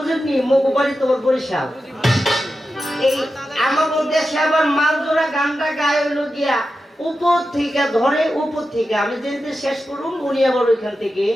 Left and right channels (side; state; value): both; normal; correlation 0.91